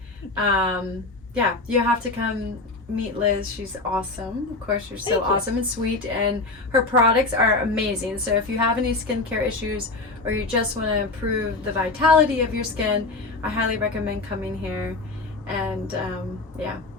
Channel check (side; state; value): right; quieter; 3.2 dB